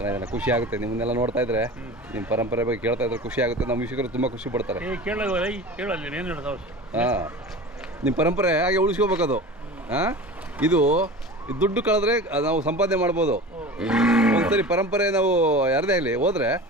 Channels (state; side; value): normal; both; correlation 0.35